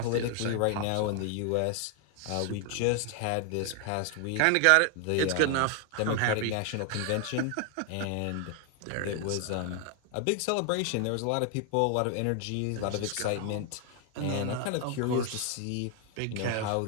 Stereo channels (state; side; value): different; both; correlation 0.00